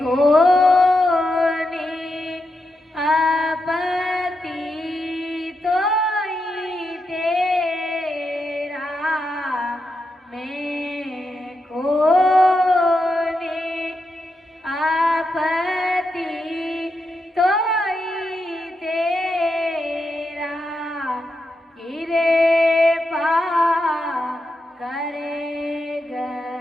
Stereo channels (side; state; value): both; normal; correlation 0.86